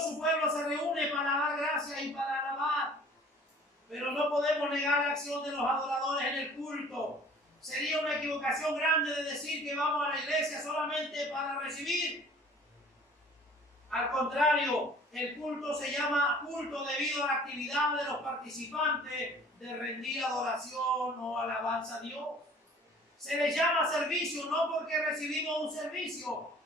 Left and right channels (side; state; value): both; normal; correlation 0.50